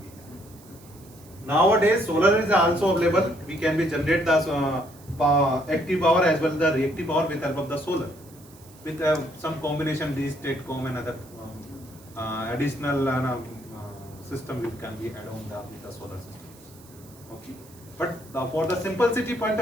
we have. Nowadays, solar is also available. We can be generate the active power as well as the reactive power with help of the solar, with some combination these STATCOM and other additional system we can be add on with the solar systems. Okay. But for the simplicity point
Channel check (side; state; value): right; noise; hiss, 24 dB below the sound